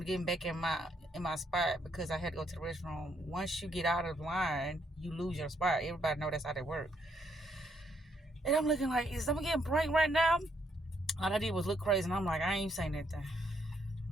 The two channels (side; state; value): both; normal; correlation 0.73